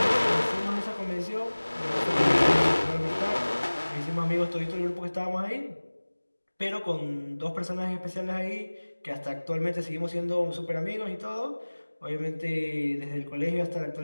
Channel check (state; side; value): inverted; both; correlation -1.00